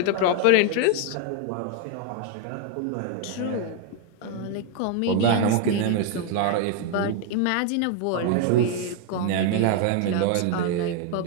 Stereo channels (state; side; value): different; both; correlation 0.00